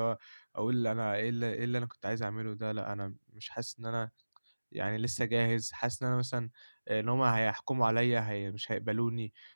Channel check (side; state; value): both; inverted; correlation -1.00